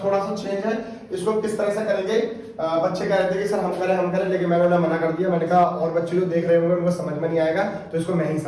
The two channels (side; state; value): both; identical; correlation 1.00